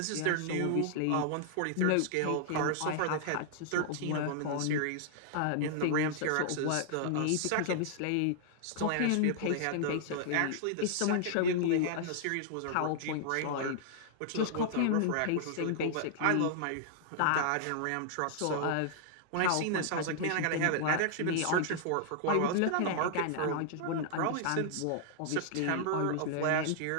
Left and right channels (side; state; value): both; different; correlation -0.01